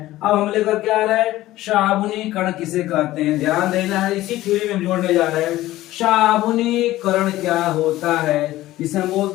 अब हम लेकर क्या आ रहा है, साबुनीकरण किसे कहते हैं, ध्यान देना है, इसी थ्योरी में हम जोड़ने जा रहे हैं। साबुनीकरण क्या होता है, इसे हम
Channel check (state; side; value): quieter; right; 15.9 dB